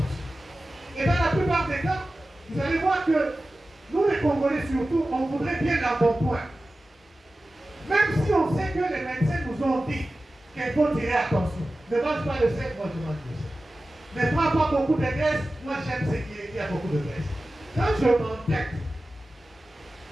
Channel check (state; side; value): normal; both; correlation 0.95